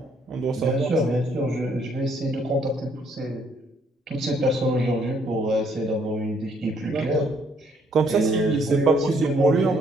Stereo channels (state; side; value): normal; both; correlation 0.67